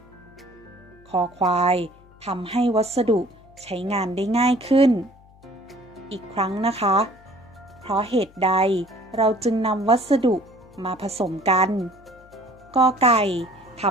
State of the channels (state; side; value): noise; left; hum, 26 dB below the sound